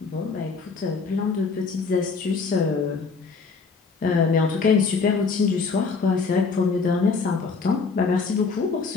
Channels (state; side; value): quieter; right; 4.8 dB